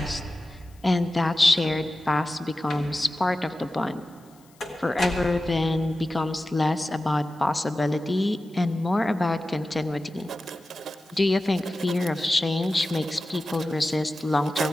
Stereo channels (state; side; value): noise; left; hiss, 30 dB below the sound